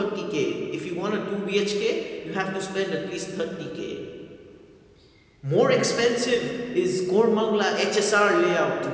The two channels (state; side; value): identical; both; correlation 1.00